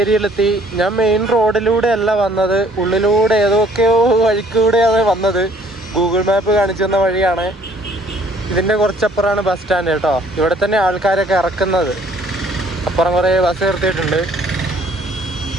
ഞാൻ മെയിൻ റോഡിലൂടെ അല്ല വന്നത്, ഉള്ളിലൂടെ ഏതൊക്കെയോ വഴിക്കൂടെയാണ് വന്നത്. ഗൂഗിൾ മാപ്പ് കാണിച്ചു തന്ന വഴിയാണ്. ഇതിൻ്റെ കുറച്ചപ്പുറമാണ് ബസ് സ്റ്റാൻഡ് കേട്ടോ. ഇവിടെ തന്നെ ആൾക്കാരൊക്കെ ഇറക്കുന്നത്. അപ്പുറം കുറേ ബസ് നിർത്തിയിട്ടുണ്ട്.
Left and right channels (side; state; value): both; normal; correlation 0.60